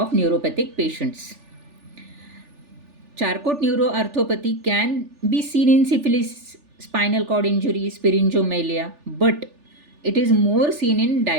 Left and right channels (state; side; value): late; left; 3.4 ms